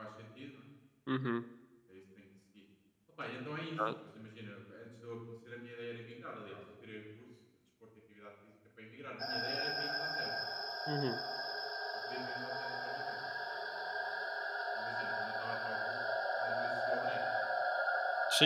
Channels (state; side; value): identical; both; correlation 1.00